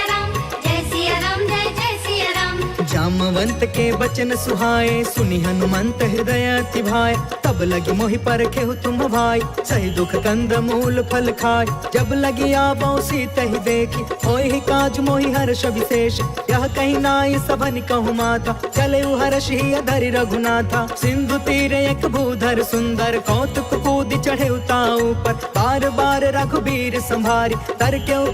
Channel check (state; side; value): identical; both; correlation 1.00